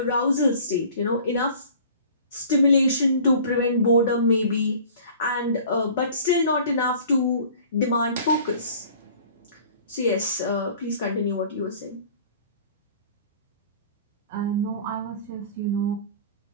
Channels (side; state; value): both; inverted; correlation -0.48